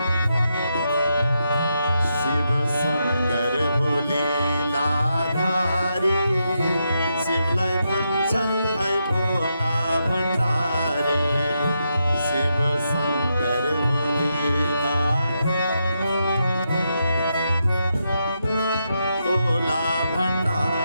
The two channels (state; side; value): inverted; both; correlation -0.83